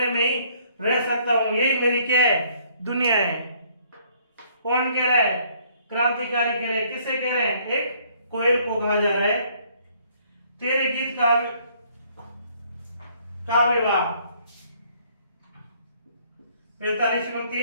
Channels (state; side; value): inverted; both; correlation -0.63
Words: में ही रह सकता हूँ, यही मेरी क्या है? दुनिया है। कौन कह रहा है? क्रांतिकारी कह रहे हैं। किसे कह रहे हैं? एक कोयल को कहा जा रहा है। तेरे गीत काव्य वाह 45